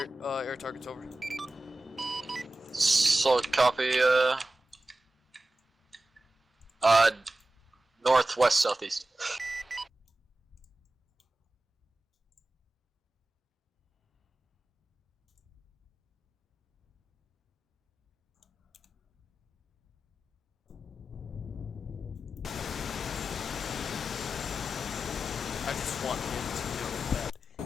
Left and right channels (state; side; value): normal; both; correlation 0.94